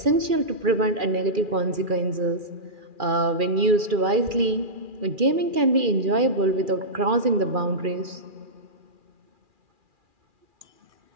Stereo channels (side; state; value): left; late; 2.4 ms